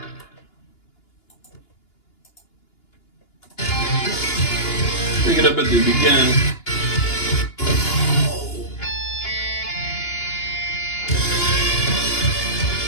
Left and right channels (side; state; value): right; late; 2.9 ms